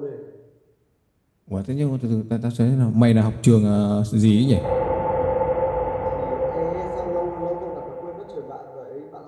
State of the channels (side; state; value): both; identical; correlation 1.00